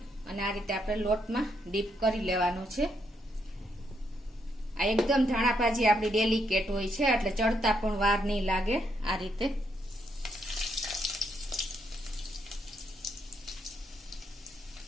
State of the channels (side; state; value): both; normal; correlation 0.76